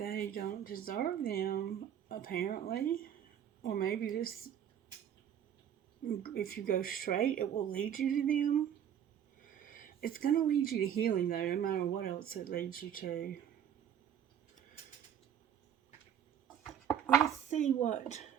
don't deserve them, apparently. Or maybe this, if you go straight, it will lead you to them. It's going to lead you to healing, though, no matter what else it leads you to.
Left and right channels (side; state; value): left; quieter; 9.3 dB